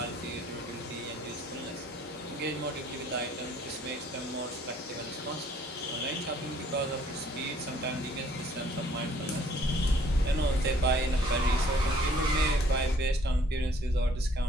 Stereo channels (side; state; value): both; normal; correlation 0.60